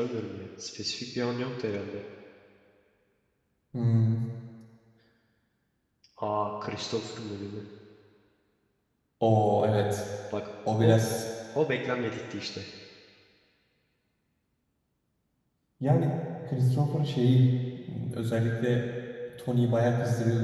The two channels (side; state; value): both; identical; correlation 1.00